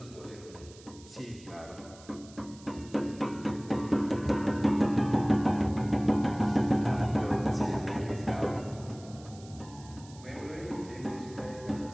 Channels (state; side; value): noise; right; hiss, 22 dB below the sound